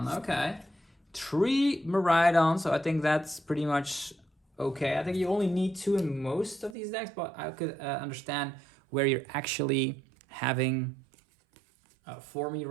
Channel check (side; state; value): left; drops out; at 6.8 s